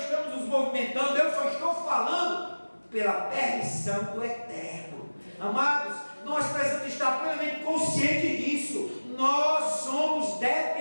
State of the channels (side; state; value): both; inverted; correlation -1.00